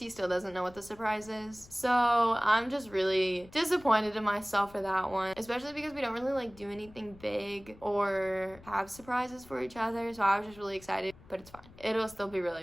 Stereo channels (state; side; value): noise; left; rumble, 22 dB below the sound